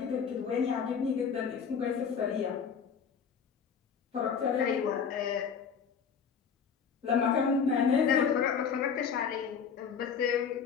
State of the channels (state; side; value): quieter; right; 6.7 dB